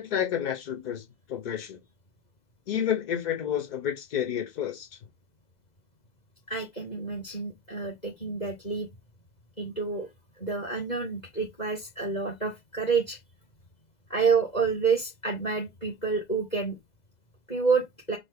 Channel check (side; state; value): right; late; 2.0 ms